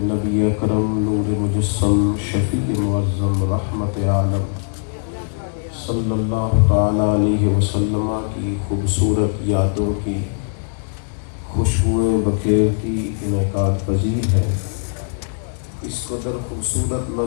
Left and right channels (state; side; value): silent; right; digital silence